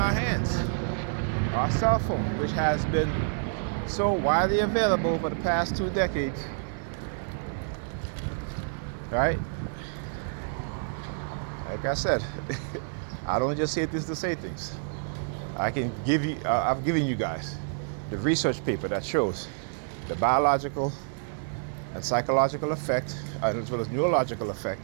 hands. Our cell phone, which has been so widely available for the past 2 decades. Right? Like I said, I don't just say this to say things. I can give you, I've given you guys the research paper that shows the biological and psychological effect, as well as neurological effect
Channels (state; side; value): silent; left; 59 dB below the other